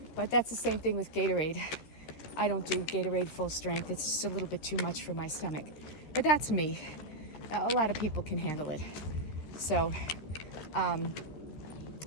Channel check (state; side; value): late; right; 13 ms